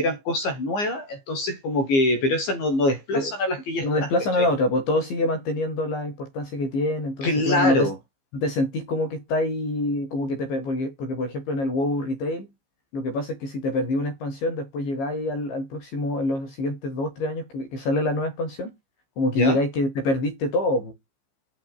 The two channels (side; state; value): right; late; 15 ms